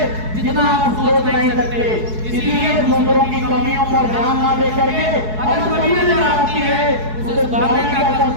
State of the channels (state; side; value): late; left; 4.7 ms